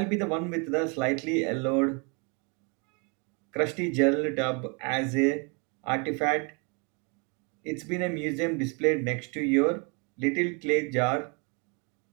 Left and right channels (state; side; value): quieter; left; 33.6 dB